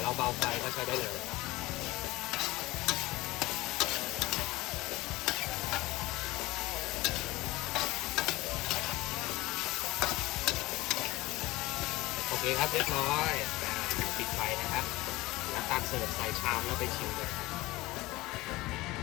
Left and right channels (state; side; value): quieter; right; 20.0 dB